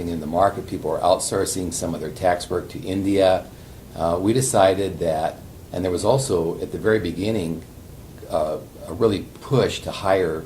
in the market. People were outsourcing some of their tax work to India. We decided that, and there was also at the very beginning a really push to hire.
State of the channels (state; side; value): identical; both; correlation 1.00